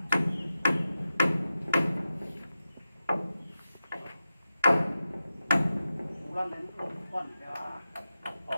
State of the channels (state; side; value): inverted; both; correlation -0.92